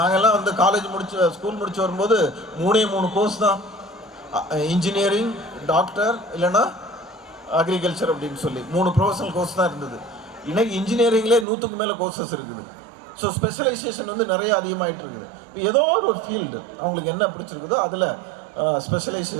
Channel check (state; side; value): drops out; left; at 11.5 s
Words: வந்து ஸ்கூல் முடிச்சு வரும்போது 3 கோர்ஸ் தான், இன்ஜினியரிங், டாக்டர், இல்லைன்னா அக்ரிகல்ச்சர் அப்படின்னு சொல்லி 3 ப்ரொஃபஷனல் கோர்ஸ் தான் இருந்தது. இன்னைக்கு இன்ஜினியரிங்லேயே 100க்கு மேலே கோர்சஸ் இருக்குது. ஸோ ஸ்பெஷலைசேஷன் வந்து நிறைய அதிகமாகிட்டு இருக்குது. இப்போ ஏதோ ஒரு ஃபீல்டு அவங்களுக்கு என்ன பிடிச்சிருக்குதோ அதில்